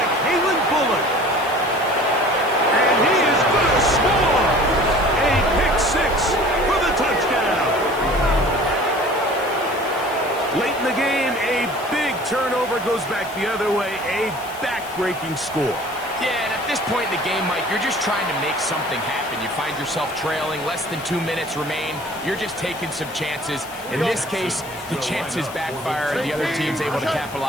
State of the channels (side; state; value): left; noise; hiss, 18 dB below the sound